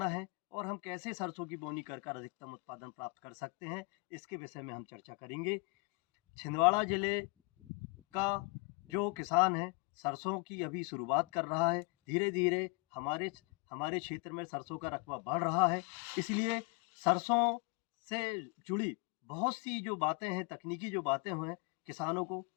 है और हम कैसे सरसों की बोनी कर कर अधिकतम उत्पादन प्राप्त कर सकते हैं, इसके विषय में हम चर्चा करेंगे। छिंदवाड़ा ज़िले का जो किसान है, सरसों की अभी शुरुआत कर रहा है। धीरे-धीरे हमारे हमारे क्षेत्र में सरसों का रकबा बढ़ रहा है, इसलिए सरसों से जुड़ी बहुत सी जो बातें हैं, तकनीकी जो बातें हैं, किसानों को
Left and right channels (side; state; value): right; quieter; 30.4 dB